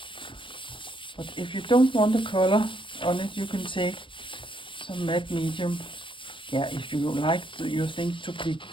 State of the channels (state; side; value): late; right; 0.25 ms